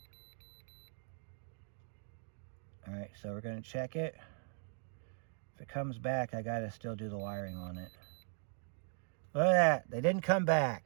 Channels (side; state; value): left; silent; 52 dB below the other